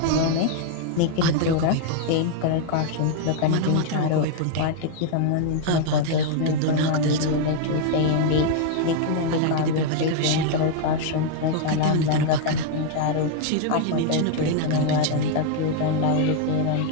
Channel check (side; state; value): both; different; correlation 0.00